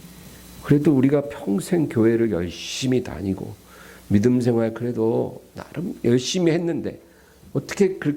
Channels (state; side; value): identical; both; correlation 1.00